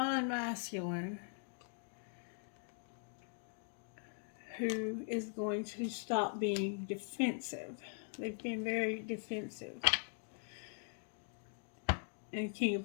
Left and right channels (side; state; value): right; silent; 50 dB below the other